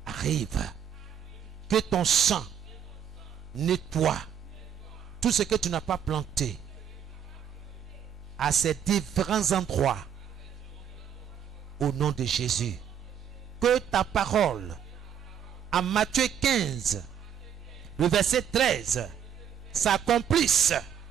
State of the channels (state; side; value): quieter; left; 8.7 dB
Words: arrive, que ton sang nettoie tout ce que tu n'as pas planté à ces différents endroits au nom de Jésus. Que ta parole en Matthieu 15, le verset 13, s'accomplisse